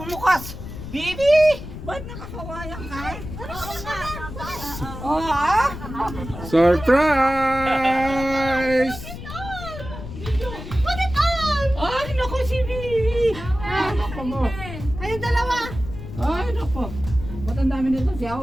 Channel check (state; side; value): noise; left; rumble, 10 dB below the sound